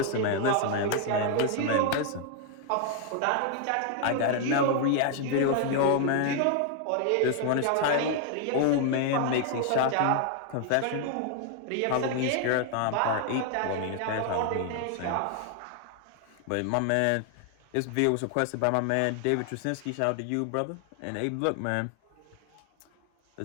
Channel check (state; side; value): different; both; correlation 0.00